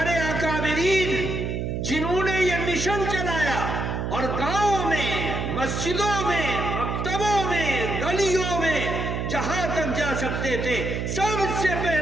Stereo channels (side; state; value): right; noise; hum, 2 dB below the sound